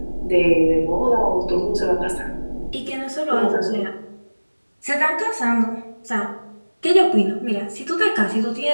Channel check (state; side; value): inverted; both; correlation -1.00